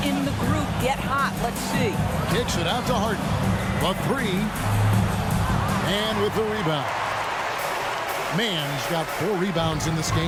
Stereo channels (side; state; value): both; identical; correlation 1.00